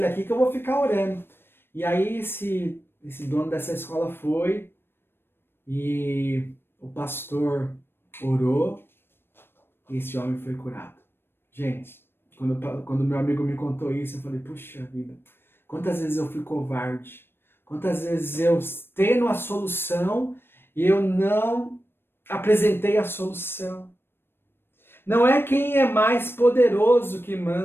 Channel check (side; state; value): right; late; 0.11 ms